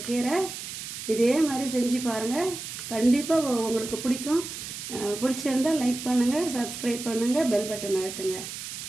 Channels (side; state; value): right; noise; hiss, 8 dB below the sound